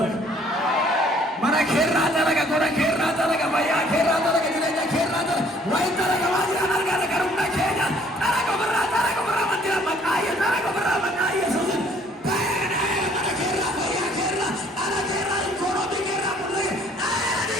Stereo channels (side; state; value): both; normal; correlation 0.60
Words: Mara kerra tara ka kora kerra tara ka baya kerra tara ka dileja kerra tara. Wai tara ka wadi anar ka karumna kenya. Tara ko barra mandira makaya tara ko barra makaya sudin. Bana mara kerra baya kerra ara kerra kono di kerra mulle. Ari